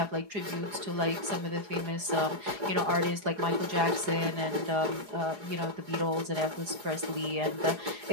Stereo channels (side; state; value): left; late; 4.8 ms